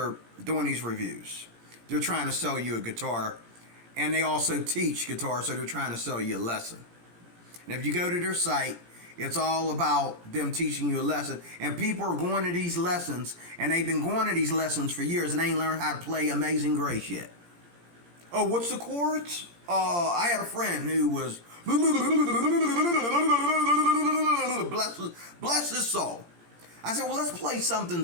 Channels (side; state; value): left; late; 17 ms